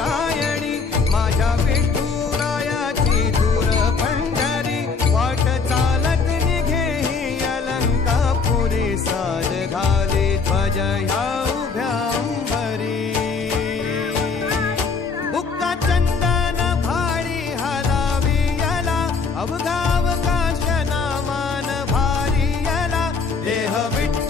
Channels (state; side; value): quieter; right; 4.9 dB